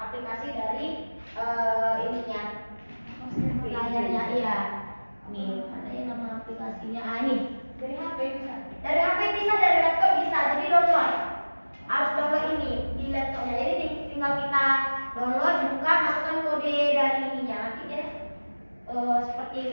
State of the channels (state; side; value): inverted; both; correlation -1.00